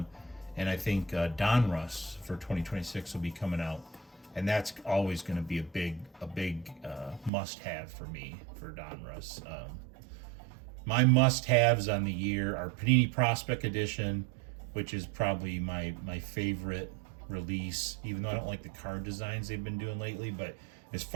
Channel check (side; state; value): left; drops out; at 7.3 s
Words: and I think Donruss for 2026 will be coming out, and that's always going to be a big must-have for me for Donruss. My must-haves on the year are Panini Prospect Edition, which is probably my favorite release, even though I don't like the card designs they've been doing lately. But as